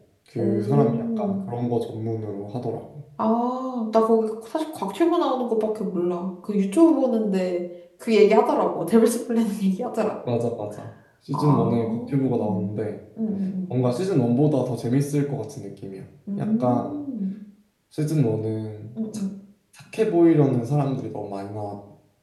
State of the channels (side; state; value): both; identical; correlation 1.00